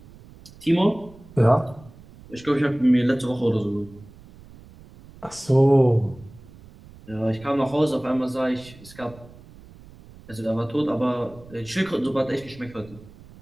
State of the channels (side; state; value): right; noise; rumble, 21 dB below the sound